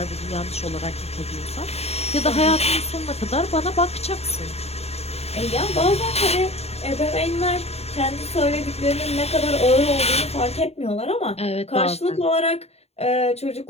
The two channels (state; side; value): late; right; 0.30 ms